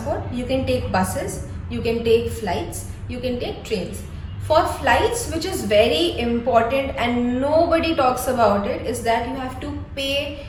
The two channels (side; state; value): both; identical; correlation 1.00